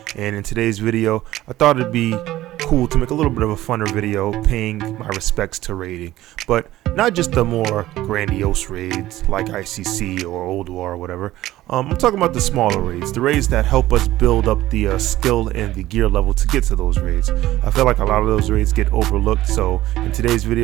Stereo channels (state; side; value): quieter; left; 15.4 dB